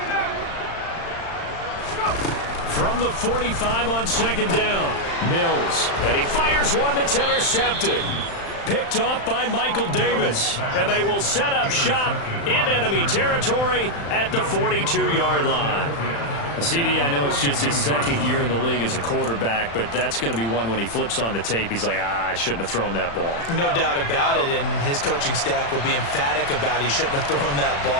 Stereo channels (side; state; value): right; late; 35 ms